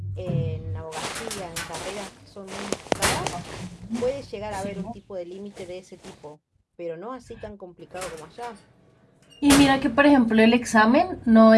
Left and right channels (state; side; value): identical; both; correlation 1.00